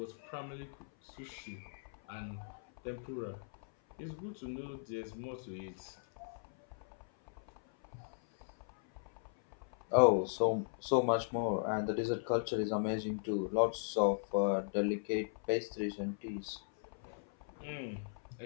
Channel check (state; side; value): silent; right; 53 dB below the other